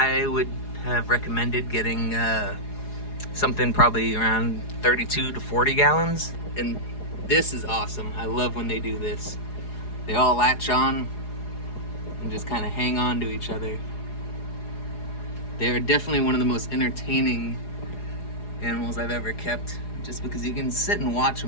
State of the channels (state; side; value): late; right; 4.8 ms